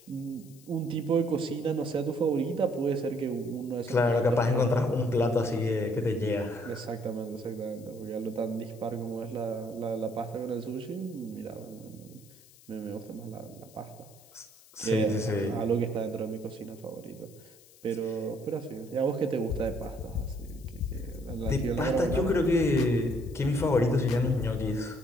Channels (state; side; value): noise; left; hiss, 25 dB below the sound